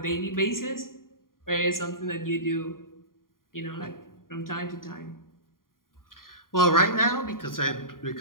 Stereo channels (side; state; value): right; late; 0.91 ms